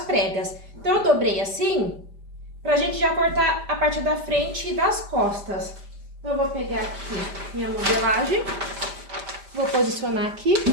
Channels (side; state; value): left; late; 5.0 ms